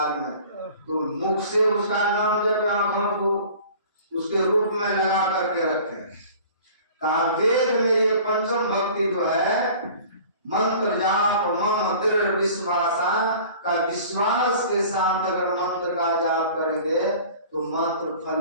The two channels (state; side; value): inverted; both; correlation -0.45